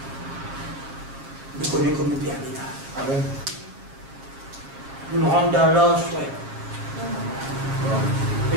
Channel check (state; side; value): late; left; 7.5 ms